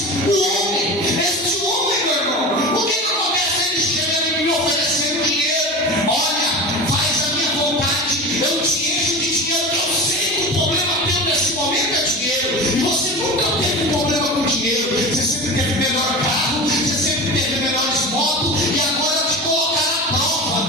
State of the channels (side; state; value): both; normal; correlation 0.30